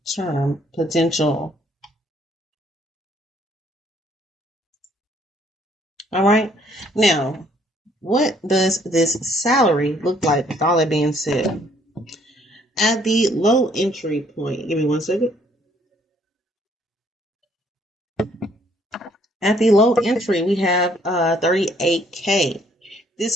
term potential. All right. Now, what does this salary look like with all that being said? At the low entry point, give me 1 second. At the low entry, we have 38K.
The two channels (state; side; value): normal; both; correlation 0.64